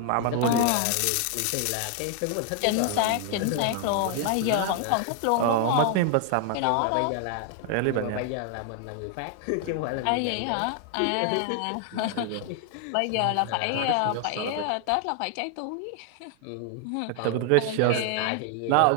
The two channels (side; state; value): both; different; correlation 0.00